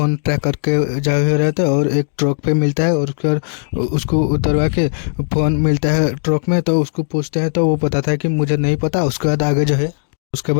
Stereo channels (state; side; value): silent; right; digital silence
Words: ट्रैक करके जा रहे थे और एक ट्रक पे मिलता है और उसके बाद उसको उतरवा के फ़ोन मिलता है ट्रक में। तो उसको पूछते हैं तो वो बताता है कि मुझे नहीं पता। उसके बाद आगे जो है उसके